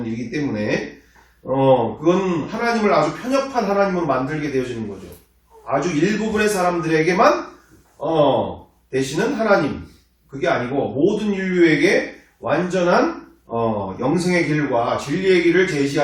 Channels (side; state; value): both; identical; correlation 1.00